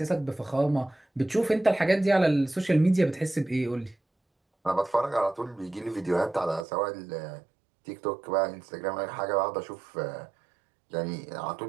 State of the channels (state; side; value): drops out; left; at 6.7 s